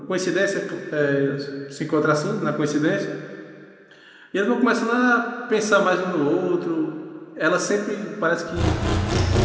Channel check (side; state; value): both; identical; correlation 1.00